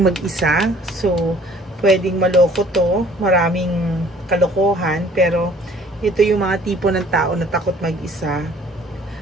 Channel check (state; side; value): normal; both; correlation 0.55